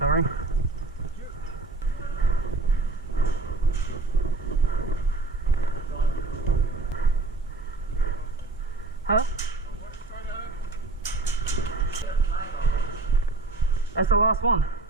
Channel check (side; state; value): left; quieter; 3.4 dB